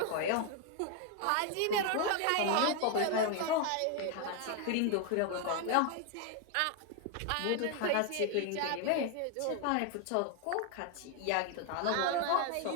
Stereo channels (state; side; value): different; both; correlation 0.01